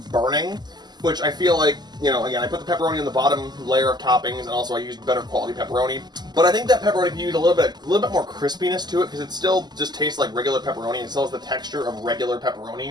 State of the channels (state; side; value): late; left; 0.21 ms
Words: burning, which I feel like, you know, again, I put the pepperoni on the bottom layer of toppings, and also I used better quality pepperoni. But I think that pepperoni can use a little bit more crispiness to it, because it still just tastes like regular pepperoni. It still has the texture of regular